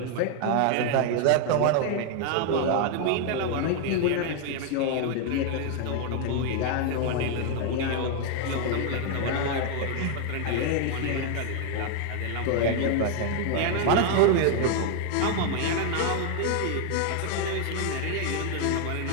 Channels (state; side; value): different; both; correlation 0.00